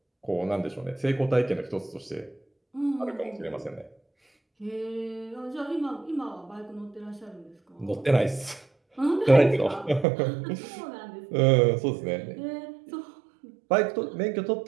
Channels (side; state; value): left; drops out; at 10.1 s